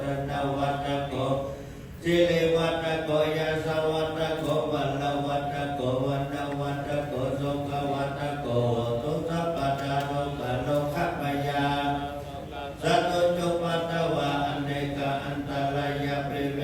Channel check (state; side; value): identical; both; correlation 1.00